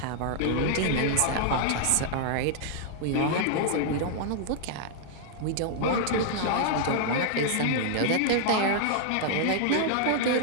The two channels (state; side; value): different; both; correlation -0.01